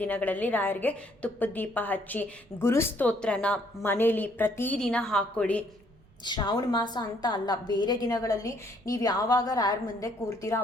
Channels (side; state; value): right; noise; rumble, 29 dB below the sound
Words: ದಿನಗಳಲ್ಲಿ ರಾಯರಿಗೆ ತುಪ್ಪದ ದೀಪ ಹಚ್ಚಿ ಗುರುಸ್ತೋತ್ರನ ಮನೇಲಿ ಪ್ರತಿದಿನ ಹಾಕ್ಕೊಳ್ಳಿ. ಶ್ರಾವಣ ಮಾಸ ಅಂತ ಅಲ್ಲ, ಬೇರೆ ದಿನಗಳಲ್ಲಿ ನೀವು ಯಾವಾಗ ರಾಯರ ಮುಂದೆ ಕೂರ್ತೀರೋ